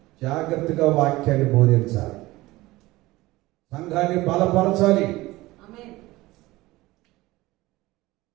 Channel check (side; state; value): left; quieter; 19.2 dB